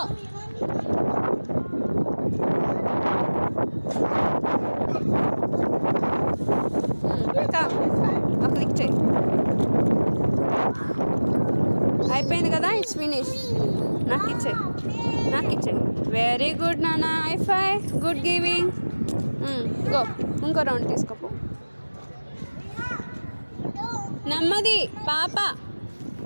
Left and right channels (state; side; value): inverted; both; correlation -1.00